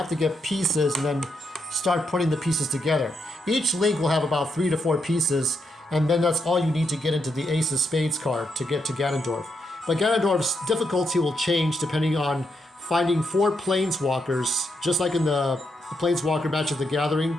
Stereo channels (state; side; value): normal; both; correlation 0.80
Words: to get pieces and then start putting the pieces together. Each Link will have about 3 to 4 pieces, and then that's all you need to get into the Ace of Spades card to get to Ganondorf. But Ganondorf's difficulty will change depending on finding 4 Planeswalkers, just like in the Planeswalker Magic the